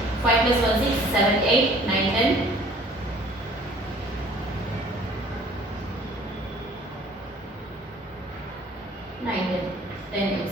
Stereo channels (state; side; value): normal; both; correlation 0.53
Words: 5 plus 1 6, 7, 8, 9, 10. 9, 10